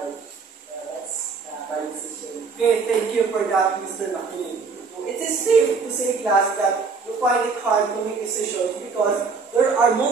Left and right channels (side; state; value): left; quieter; 4.8 dB